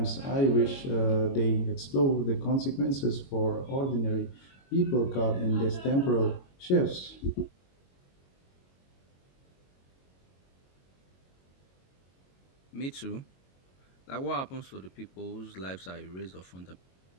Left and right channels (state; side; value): late; right; 22 ms